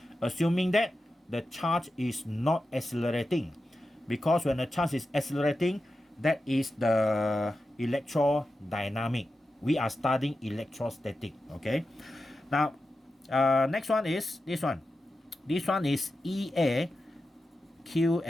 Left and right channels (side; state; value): both; normal; correlation 0.91